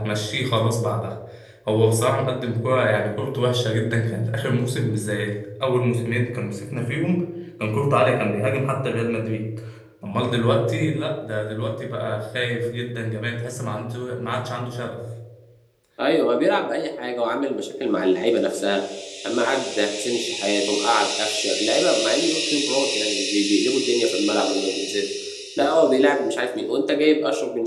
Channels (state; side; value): identical; both; correlation 1.00